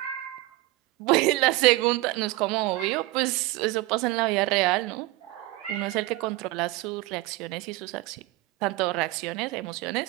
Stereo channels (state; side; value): quieter; left; 19.1 dB